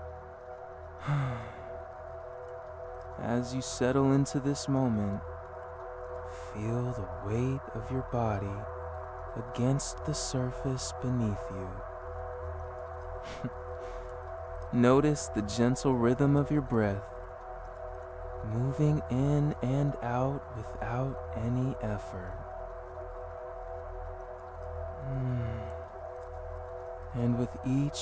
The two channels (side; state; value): both; identical; correlation 1.00